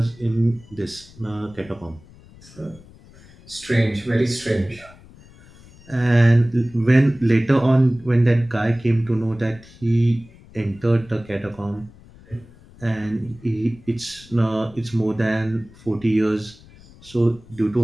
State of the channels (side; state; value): left; noise; rumble, 23 dB below the sound